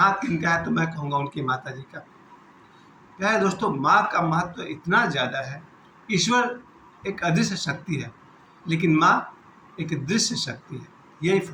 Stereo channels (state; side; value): identical; both; correlation 1.00